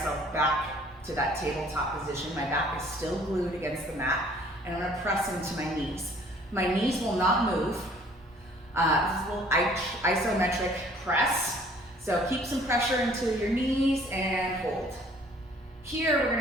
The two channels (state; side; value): normal; both; correlation 0.56